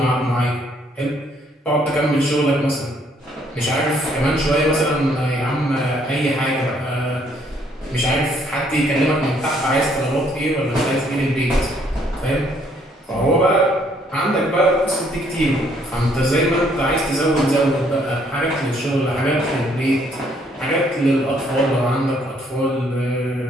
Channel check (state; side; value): normal; both; correlation 0.66